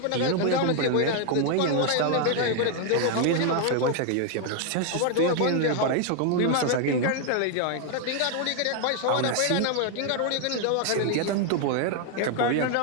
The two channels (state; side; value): different; both; correlation 0.00